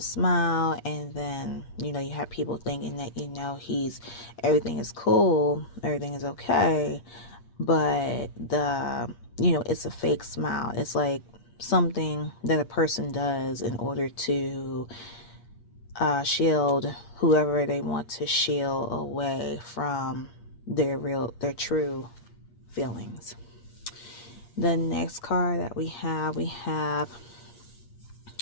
smile, and then, you know, you have people thinking that, you know, everything is cool, everything is okay, but you know, it's a fake smile. It's like something that a person does in order to shield whoever they want to shield away from their true feelings. The next card that we have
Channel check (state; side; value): late; right; 8.4 ms